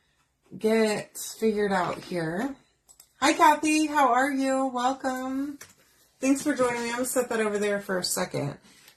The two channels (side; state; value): both; identical; correlation 1.00